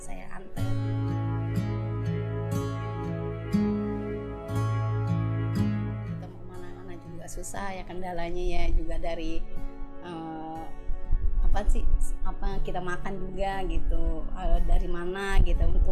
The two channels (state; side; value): identical; both; correlation 1.00